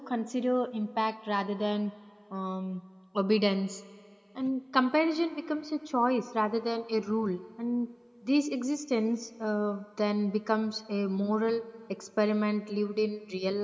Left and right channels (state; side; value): identical; both; correlation 1.00